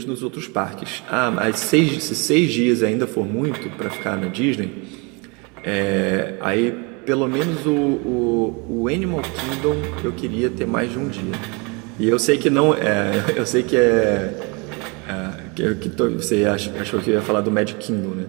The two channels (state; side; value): quieter; left; 30.3 dB